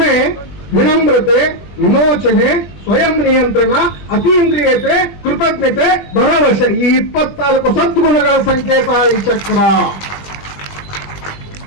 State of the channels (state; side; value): late; right; 20 ms